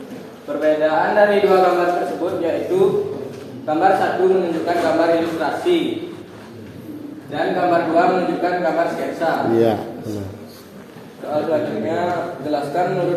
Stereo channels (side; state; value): both; identical; correlation 1.00